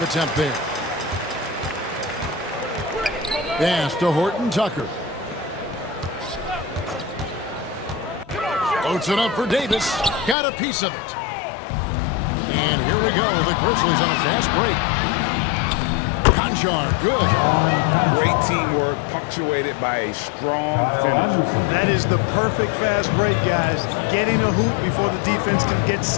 attempt there. Pass to Horton Tucker. Floats it up for Davis. Got a piece of it. And here we go. The Grizzlies on a fast break. Conjar, good. Great teamwork, punctuated by a strong finish. That is the perfect fast break, guys. Getting a hoop before the defense can get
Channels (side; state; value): right; drops out; at 10.4 s